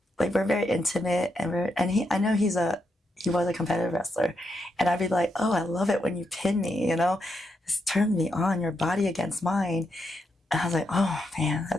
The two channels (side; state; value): both; normal; correlation 0.82